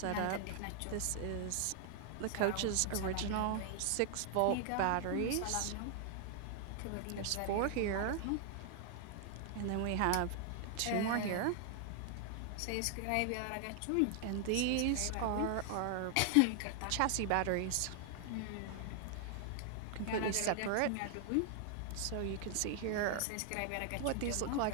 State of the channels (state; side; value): different; both; correlation 0.00